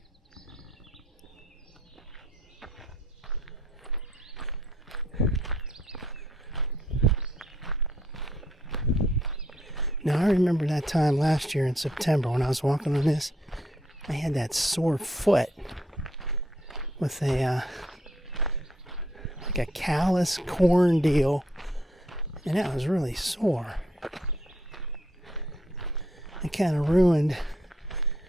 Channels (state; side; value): normal; both; correlation 0.71